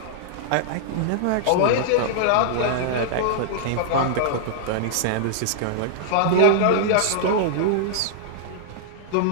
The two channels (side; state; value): both; different; correlation -0.01